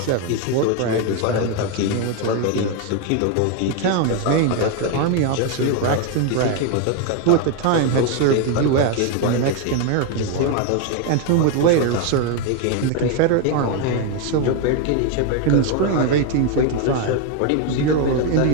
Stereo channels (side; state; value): both; different; correlation 0.01